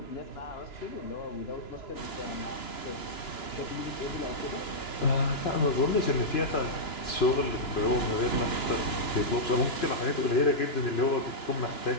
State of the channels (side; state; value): right; late; 2.9 ms